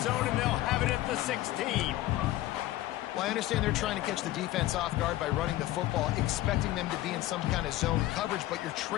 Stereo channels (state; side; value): quieter; right; 15.5 dB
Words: zone, and they'll have it at the 16. Well, I understand they're trying to catch the defense off guard by running the football, expecting them to be in some kind of zone coverage, but you're